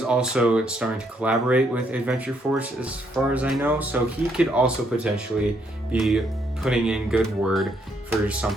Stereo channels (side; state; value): both; normal; correlation 0.73